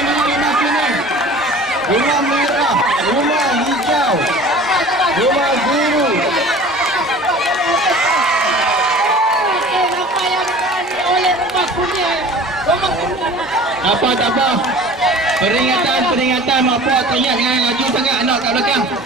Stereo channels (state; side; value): normal; both; correlation 0.43